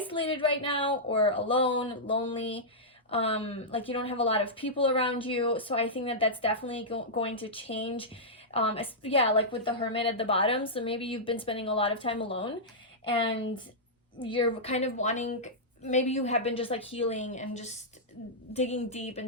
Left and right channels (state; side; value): normal; both; correlation -0.11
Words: right now, or alone, lonely. Like you don't have a lot of people around you. So I think that that's definitely going to change. Yeah, like with the Hermit at the bottom. So maybe you've been spending a lot of time alone, and you're kind of wanting, maybe you have been just like healing and just digging deep